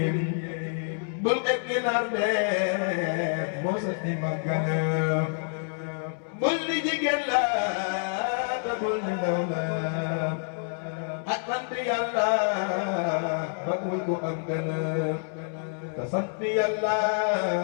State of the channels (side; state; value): right; silent; 60 dB below the other